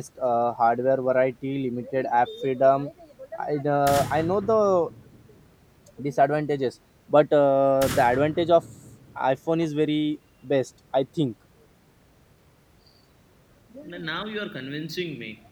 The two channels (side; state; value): both; identical; correlation 1.00